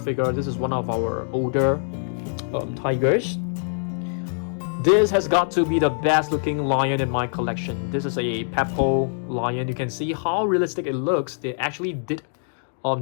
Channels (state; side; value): silent; right; digital silence